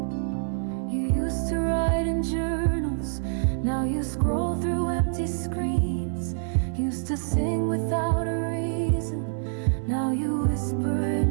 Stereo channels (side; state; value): left; silent; 58 dB below the other